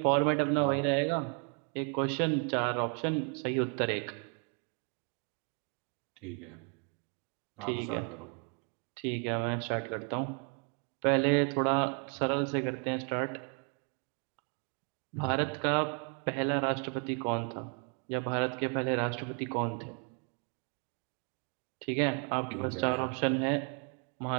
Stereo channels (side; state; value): left; quieter; 38.0 dB